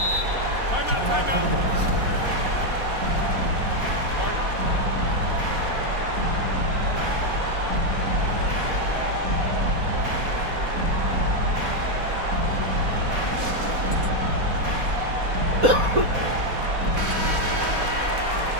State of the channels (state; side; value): late; left; 4.1 ms